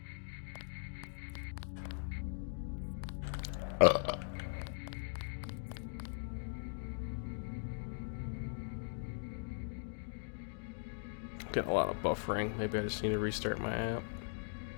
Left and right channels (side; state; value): right; silent; digital silence